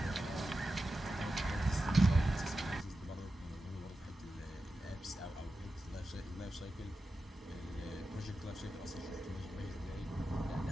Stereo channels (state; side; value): normal; both; correlation 0.92